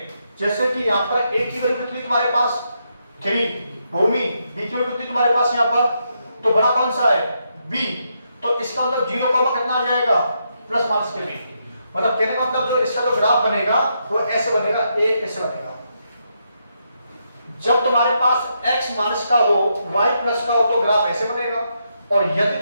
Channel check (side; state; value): both; inverted; correlation -0.80